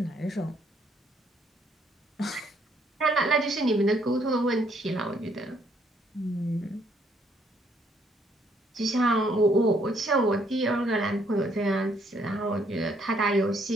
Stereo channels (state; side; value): normal; both; correlation 0.68